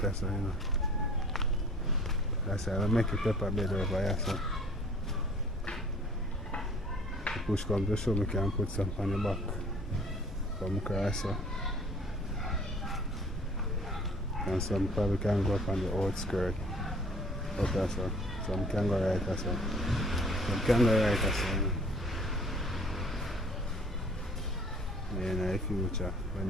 there, so, you know. That's why I make a pepper bed over here, so. The push comes to show me can put some on the back. Come across, so. And some probably can go up on the outskirt. Up there, so. Some can go right there, so. Some can go right there, so. In the future, when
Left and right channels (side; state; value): both; normal; correlation 0.52